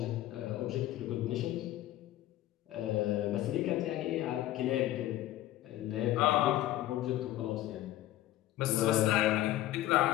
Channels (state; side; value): quieter; right; 14.6 dB